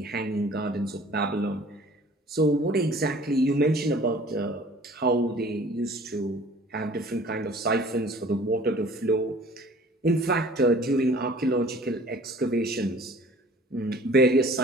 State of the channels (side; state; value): both; normal; correlation 0.50